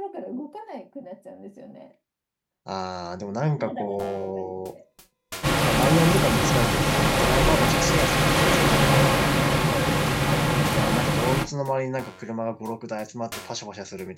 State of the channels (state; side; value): identical; both; correlation 1.00